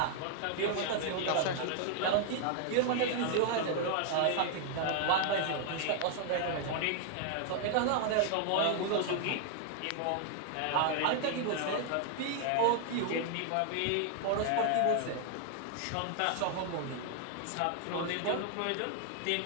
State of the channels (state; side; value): different; both; correlation 0.00